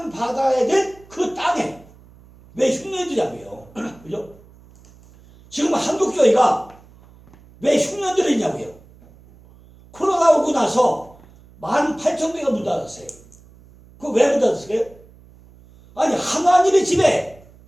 될 그 땅에 왜 흉년이 들냐고요. 그죠? 지금 한국교회가 왜 흉년들이 있냐고요. 코로나 오고 나서 18,000개가 문 닫았어요. 그거 왜 문 닫았어요? 아니, 하나님의 집에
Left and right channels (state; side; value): noise; right; hum, 25 dB below the sound